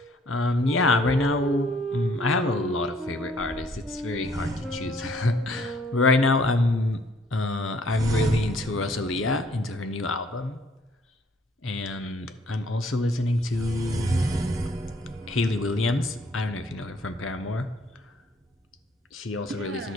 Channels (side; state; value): both; normal; correlation 0.62